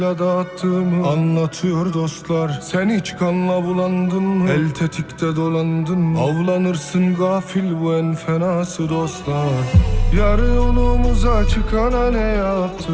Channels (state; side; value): identical; both; correlation 1.00